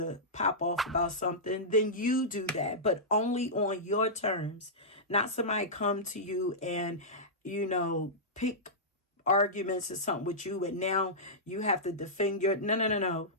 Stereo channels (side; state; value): both; normal; correlation -0.14